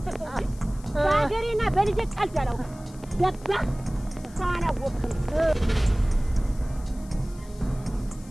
እንጂ በሀገሬና በልጄ ቀልድ አላውቅም። ገባህ? ሰው አላወቅም።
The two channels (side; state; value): left; noise; hiss, 24 dB below the sound